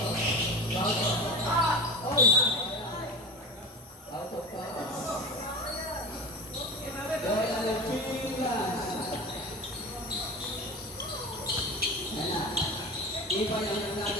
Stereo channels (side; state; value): both; normal; correlation 0.30